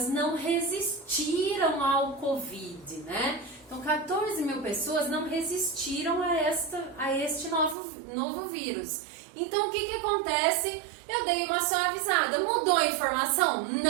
não resistiram ao Covid, né? Então, 14 mil pessoas não resistiram a este novo vírus. Então, o que acontece? Eu dei uma suavizada. Mudou a informação?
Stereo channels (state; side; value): drops out; left; at 7.8 s